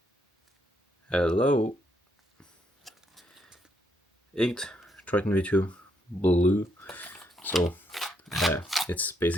Hello. Inked Triton V2 blue. So it's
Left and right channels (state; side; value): normal; both; correlation 0.75